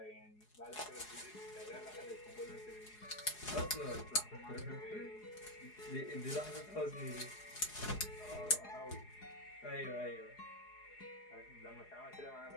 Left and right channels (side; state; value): right; late; 4.8 ms